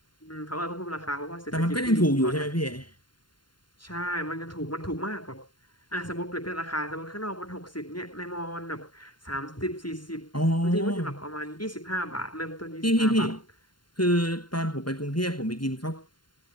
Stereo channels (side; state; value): right; late; 0.72 ms